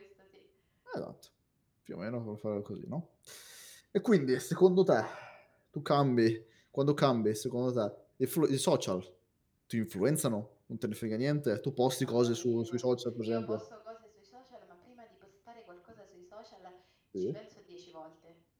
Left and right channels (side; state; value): both; identical; correlation 1.00